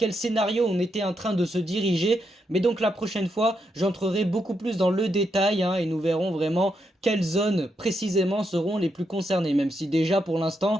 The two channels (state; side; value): normal; both; correlation 0.81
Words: scénario on était en train de se diriger. Mais donc la prochaine fois j'entrerai beaucoup plus dans le détail et nous verrons vraiment quelles zones précisément seront les plus concernées. Même si déjà pour l'instant,